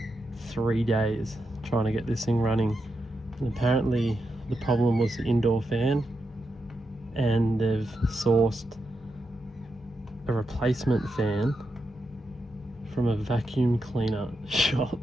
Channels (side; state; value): both; normal; correlation 0.86